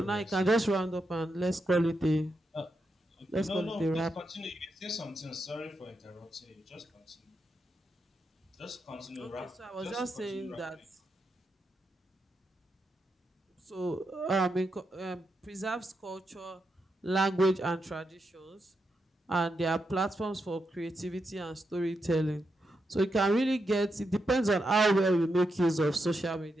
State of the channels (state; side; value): normal; both; correlation 0.85